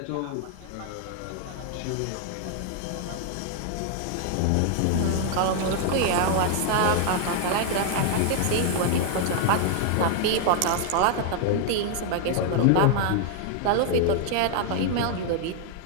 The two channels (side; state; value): both; different; correlation 0.00